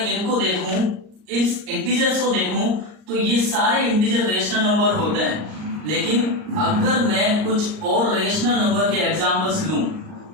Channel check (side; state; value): left; late; 38 ms